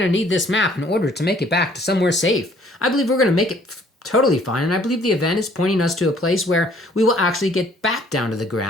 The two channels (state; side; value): normal; both; correlation 0.59